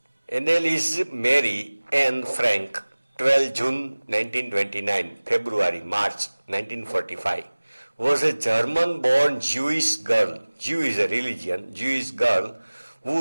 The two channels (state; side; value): inverted; both; correlation -1.00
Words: Anneliese Mary Anne Frank, 12 June 1929, February, March 1945, was a German-born Jewish girl, Jew is a religion, Jewish girl,